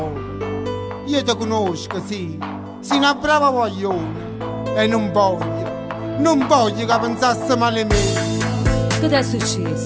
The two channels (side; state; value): both; identical; correlation 1.00